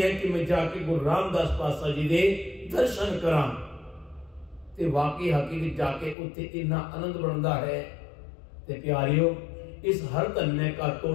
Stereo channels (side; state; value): right; drops out; at 6.2 s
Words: कि मैं जाके गुरु रामदास पातशाह जी दे दर्शन करां ते वाकई हकीकत जाके उत्थे इन्ना आनंद बनदा है। ते प्यारियो इस हर धन्य का